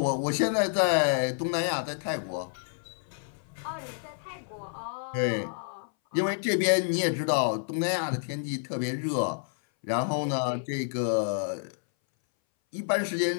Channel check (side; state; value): right; silent; 59 dB below the other